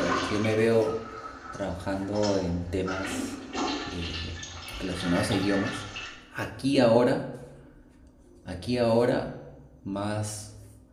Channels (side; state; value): both; identical; correlation 1.00